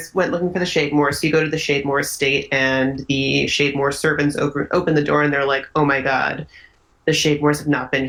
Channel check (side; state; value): both; identical; correlation 1.00